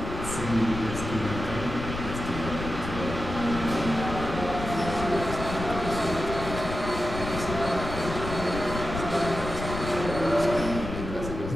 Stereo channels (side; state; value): left; noise; rumble, 7 dB below the sound